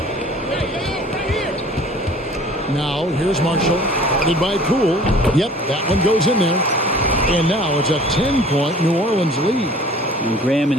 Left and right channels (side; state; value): both; normal; correlation 0.48